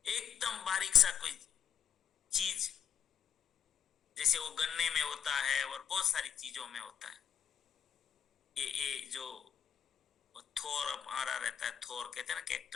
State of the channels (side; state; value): right; quieter; 8.5 dB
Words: एकदम बारीक सा कोई चीज, जैसे वो गन्ने में होता है और बहुत सारी चीजों में होता है। ये जो थोर हमारा रहता है, थोर कहते हैं ना,